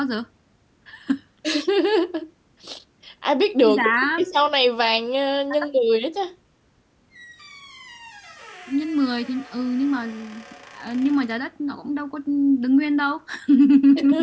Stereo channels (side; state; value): both; identical; correlation 1.00